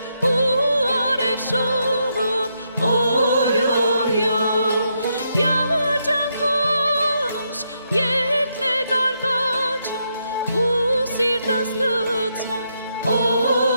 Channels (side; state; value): both; inverted; correlation -0.80